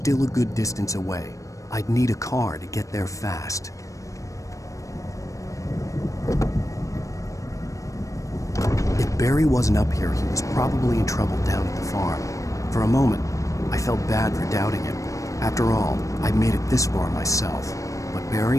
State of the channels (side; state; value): right; late; 0.16 ms